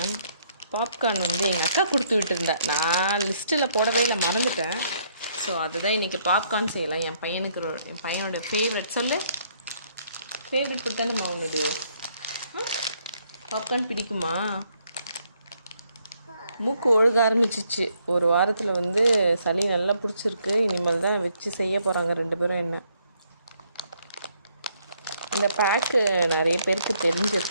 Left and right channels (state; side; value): inverted; both; correlation -0.70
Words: பாப்கார்ன் வந்து எங்கள் அக்கா கொடுத்து விட்டுருந்தேன். நான் லிஸ்ட்டில் போடவே இல்லை, மறந்துட்டேன். ஸோ அதுதான் இன்றைக்கி பாப்கார்ன் செய்யலாம். என் பையனோட ஃபேவரட் சொல்லு. ஃபேவரட் ஃபுட் தானே உன்னோட பாப்கார்ன் பிடிக்குமா? மூக்கு ஒழுக ஆரம்பிச்சிச்சு. ஒரு வாரத்தில் வந்து சளி நல்லா பிடிச்சிருக்கு. இனிமேல் தான் வச்சு செய்ய போகிறாங்க 2 பேரும். என்ன இந்த பேக்கு நிறைய பேருக்கு